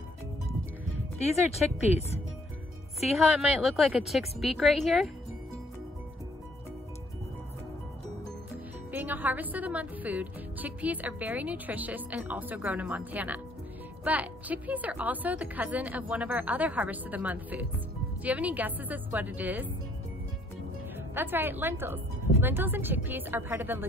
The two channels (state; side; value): normal; both; correlation 0.64